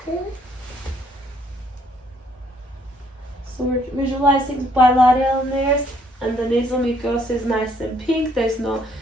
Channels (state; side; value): normal; both; correlation 0.66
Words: So we're visualizing bilateral nares, and the nasal mucosa is nice and pink. There's no